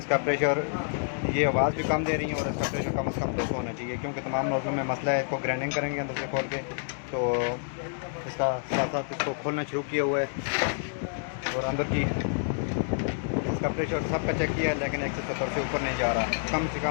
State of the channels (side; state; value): right; silent; digital silence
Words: प्रेशर, ये आवाज़ भी कम दे रही है और इसका प्रेशर कम से कम 200 होना चाहिए, क्योंकि तमाम नोज़लों में मसला है। इसको ग्राइंडिंग करेंगे अंदर से खोल के, तो इसका साथ साथ इसको खोलना शुरू किया हुआ है और अंदर की इसका प्रेशर सबका चेक किया है, लेकिन 170 से ऊपर नहीं जा रहा। कम से